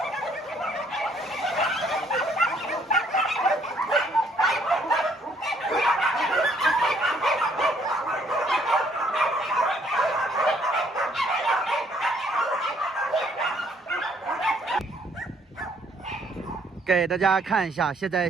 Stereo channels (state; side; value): normal; both; correlation 0.65